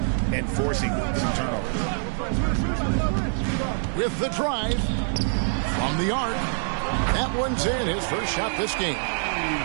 and forcing some turnovers. With the drive from the arc, that one's in, his first shot this game.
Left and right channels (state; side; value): silent; left; 62 dB below the other